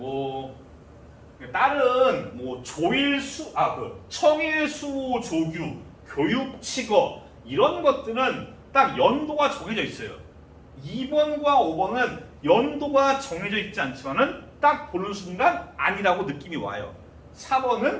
다른 조일수 청일수호 조규, 교육칙어 이런 것들은 딱 연도가 정해져 있어요. 2번과 5번은 연도가 정해져 있지 않지만은 딱 보는 순간 아니라고 느낌이 와요.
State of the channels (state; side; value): identical; both; correlation 1.00